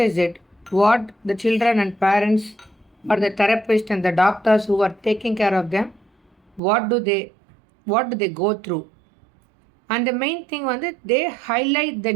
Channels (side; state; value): left; drops out; at 6.6 s